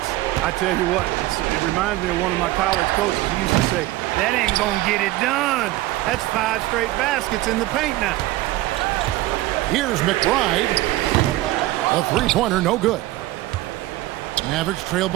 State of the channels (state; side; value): quieter; left; 17.4 dB